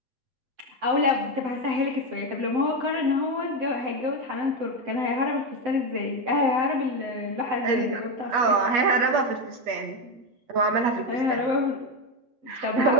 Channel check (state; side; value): late; left; 8.4 ms